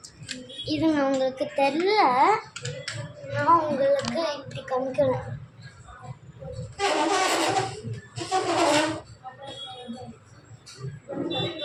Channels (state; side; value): identical; both; correlation 1.00